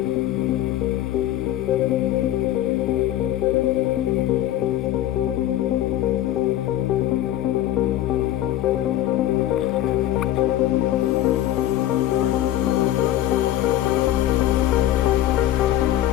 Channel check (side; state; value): right; quieter; 13.3 dB